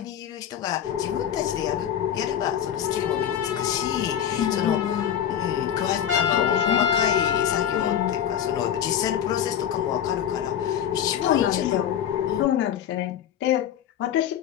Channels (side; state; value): right; quieter; 9.8 dB